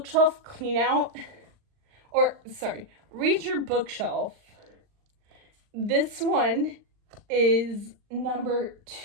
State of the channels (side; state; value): left; late; 39 ms